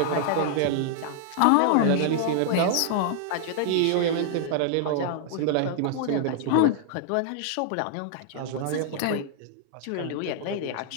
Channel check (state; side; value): different; both; correlation -0.01